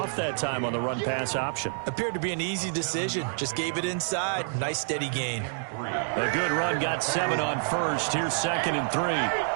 that time on the run-pass option. Appeared to be an easy decision. Just gave it inside. Nice steady gain. A good run, got 7 on first. Here's 2nd and 3.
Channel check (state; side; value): silent; left; digital silence